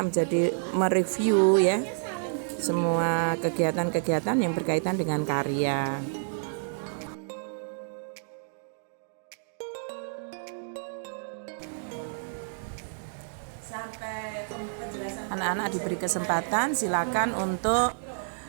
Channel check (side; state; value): left; silent; digital silence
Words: menjadi mereview ya semua kegiatan-kegiatan yang berkaitan dengan karya. Anak-anak diberi kesempatan, silakan untuk